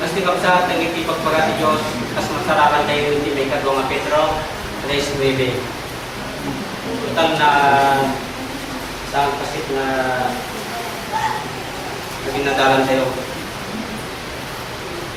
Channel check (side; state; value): both; identical; correlation 1.00